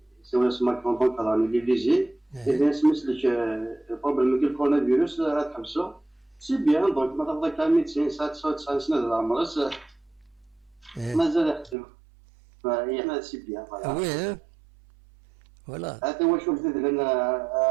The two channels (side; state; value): left; drops out; at 11.8 s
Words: c'est un smart contract dans les léger et bien c'est le problème que le coronavirus comme ça c'est bien donc maintenant avec la médecine ça سنة العمر ما زال يخدم يعني c'est bien voilà. Voilà. هذا هو شوف لأن